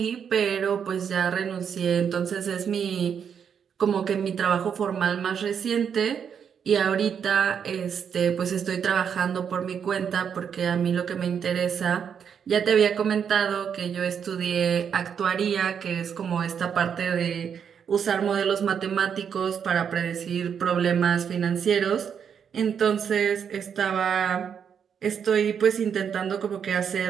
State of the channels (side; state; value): left; quieter; 7.5 dB